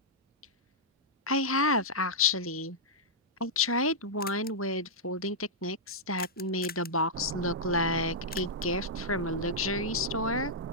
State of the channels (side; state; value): both; normal; correlation -0.09